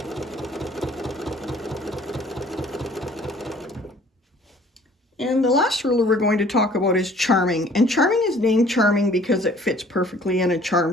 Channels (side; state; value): both; normal; correlation 0.55